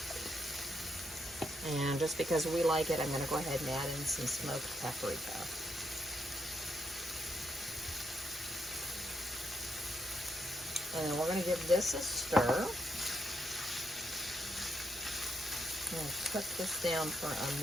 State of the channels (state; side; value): normal; both; correlation 0.79